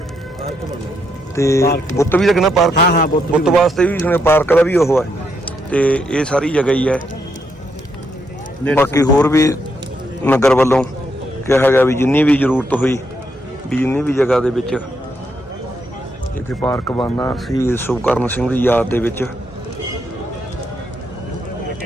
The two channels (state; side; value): normal; both; correlation 0.78